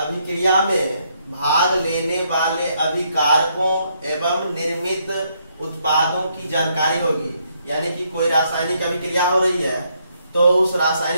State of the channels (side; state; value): both; inverted; correlation -0.73